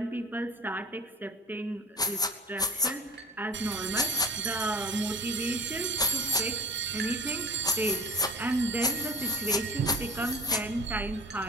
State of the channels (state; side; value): normal; both; correlation 0.42